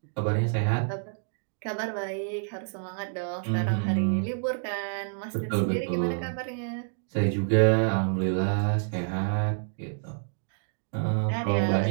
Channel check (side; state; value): left; silent; 59 dB below the other